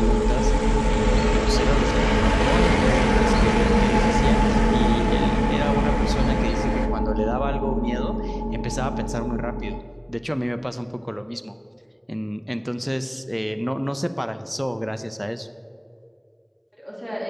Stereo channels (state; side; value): identical; both; correlation 1.00